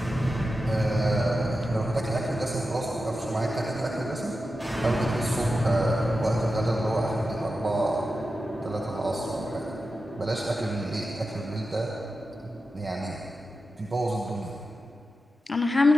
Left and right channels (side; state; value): both; normal; correlation 0.91